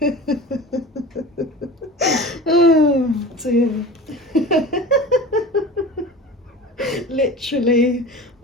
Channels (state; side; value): normal; both; correlation 0.35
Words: Oh, dear. Literally.